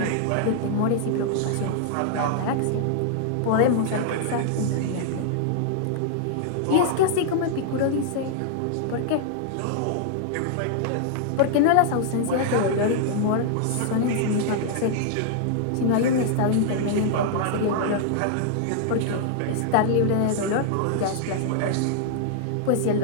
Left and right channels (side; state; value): both; different; correlation -0.01